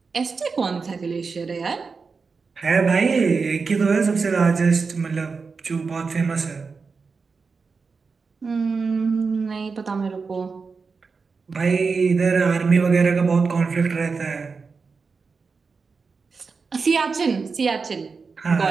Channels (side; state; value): left; quieter; 4.8 dB